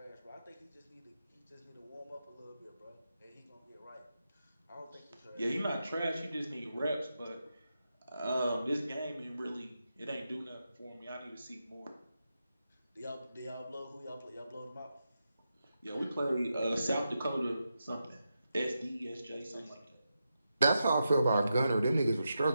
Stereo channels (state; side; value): inverted; both; correlation -0.88